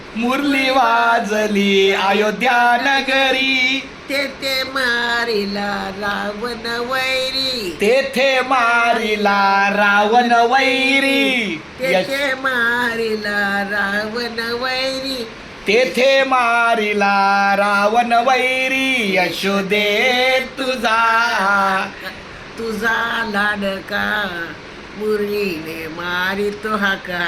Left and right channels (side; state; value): both; identical; correlation 1.00